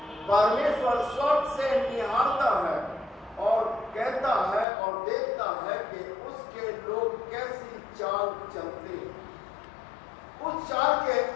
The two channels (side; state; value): right; drops out; at 4.7 s